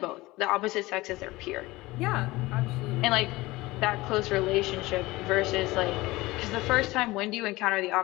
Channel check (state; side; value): quieter; right; 20.1 dB